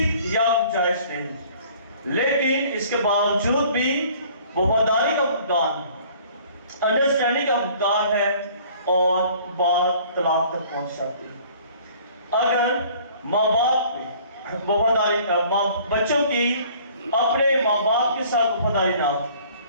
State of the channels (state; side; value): inverted; both; correlation -0.53